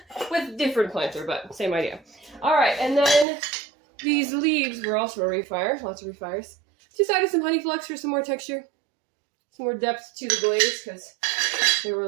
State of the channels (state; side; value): drops out; left; at 3.2 s